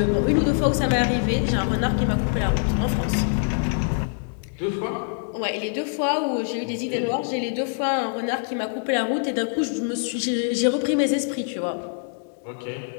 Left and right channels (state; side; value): silent; right; digital silence